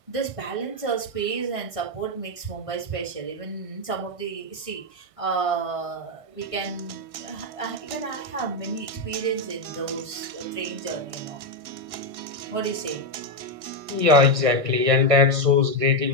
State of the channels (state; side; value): late; left; 1.6 ms